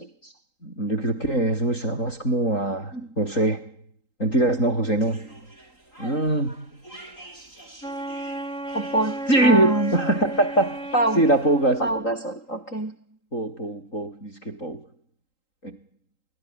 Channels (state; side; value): late; right; 3.8 ms